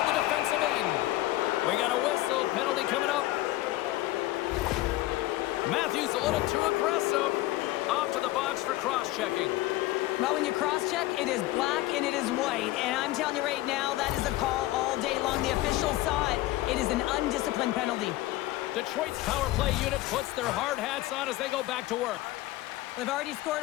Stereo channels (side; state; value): right; quieter; 17.0 dB